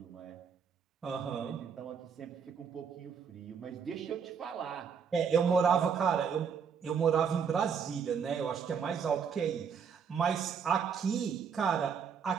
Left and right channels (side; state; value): left; quieter; 6.7 dB